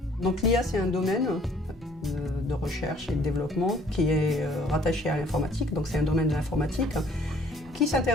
Donc l'IA, c'est un domaine de recherche et de développement qui est rattaché à l'informatique, donc c'est un domaine de l'informatique qui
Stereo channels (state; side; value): normal; both; correlation 0.59